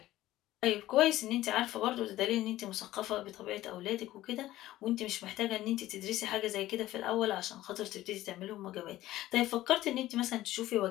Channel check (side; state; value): right; quieter; 15.3 dB